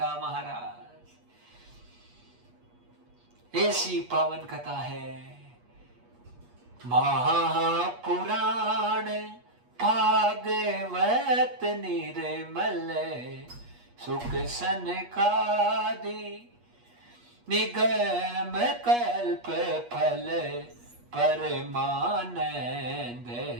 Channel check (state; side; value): late; left; 8.3 ms